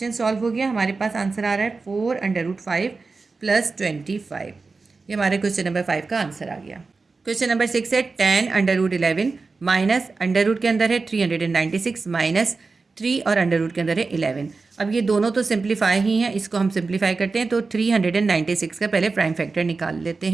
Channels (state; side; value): quieter; left; 4.1 dB